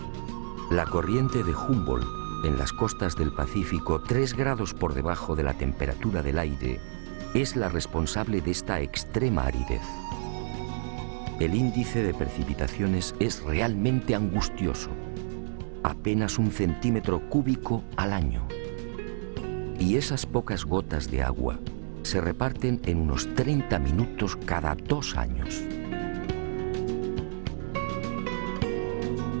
La corriente de Humboldt, en las costas del Pacífico, 3 grados por debajo de la temperatura del aire, es la responsable de esta extrema aridez. El índice de precipitaciones es realmente angustioso, apenas 1 centímetro cúbico al año. Y esas pocas gotas de agua se reparten en unos 30 minutos cada 2 años.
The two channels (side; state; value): left; silent; digital silence